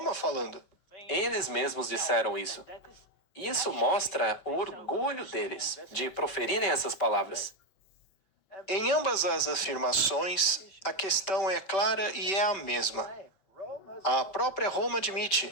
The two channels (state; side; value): late; right; 5.2 ms